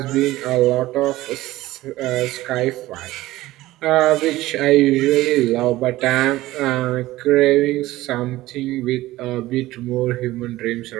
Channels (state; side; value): quieter; left; 17.0 dB